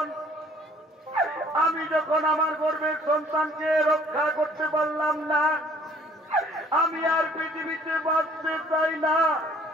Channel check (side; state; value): both; normal; correlation 0.57